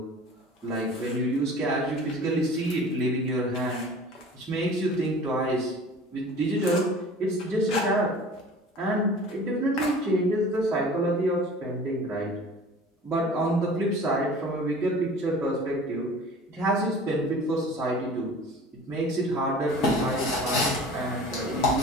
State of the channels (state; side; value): normal; both; correlation 0.43